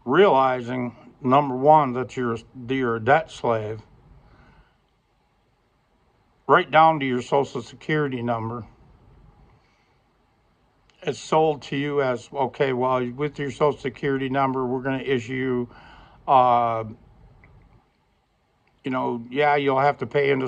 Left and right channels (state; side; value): identical; both; correlation 1.00